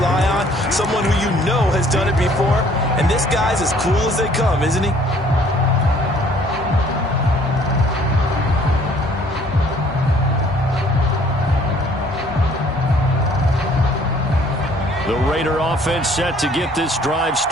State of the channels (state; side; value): normal; both; correlation 0.58